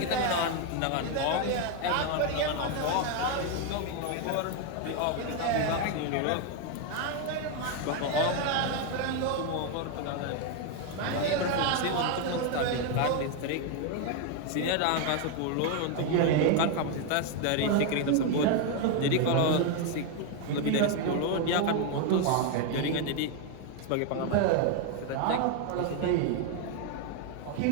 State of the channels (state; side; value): different; both; correlation 0.01